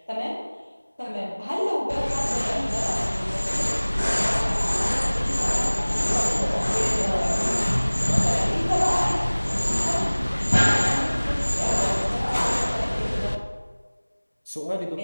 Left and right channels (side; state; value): both; inverted; correlation -1.00